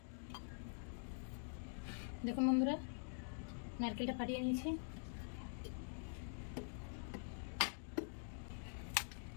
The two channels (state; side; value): silent; right; digital silence